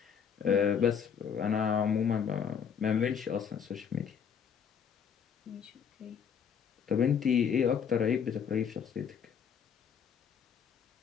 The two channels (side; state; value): right; quieter; 7.3 dB